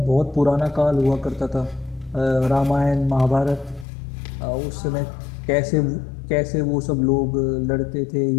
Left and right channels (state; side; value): drops out; right; at 3.9 s